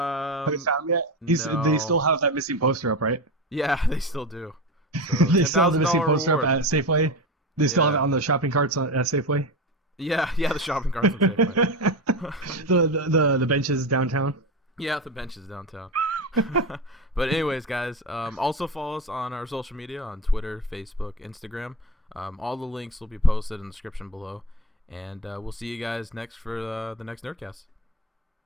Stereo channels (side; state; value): both; normal; correlation 0.22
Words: you found him yet? no. They still have that missing poster up, right? Yeah, they still do. So They still have the missing $10,000 poster reward. up at Safeway. They still have it Yeah. on the shopping carts at Safeway. Yeah, the shopping carts look very funny. The benches downtown. Yeah, the benches downtown. But anyways, guys, also follow us on our social media on Twitter, Facebook, Instagram. All the links will be posted in the description below. And we'll see you guys next for the next Nerdcast.